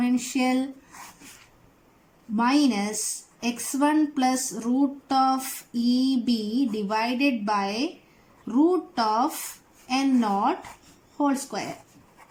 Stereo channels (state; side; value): identical; both; correlation 1.00